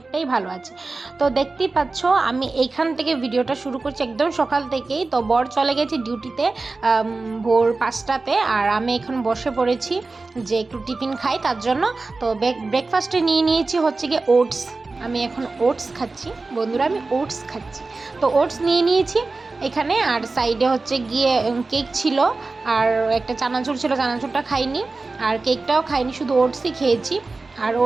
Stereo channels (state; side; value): quieter; left; 3.6 dB